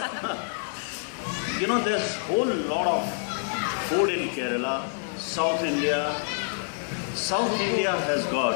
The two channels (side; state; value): right; silent; digital silence